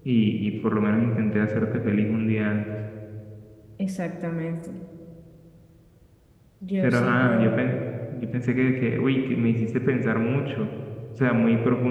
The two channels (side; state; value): both; identical; correlation 1.00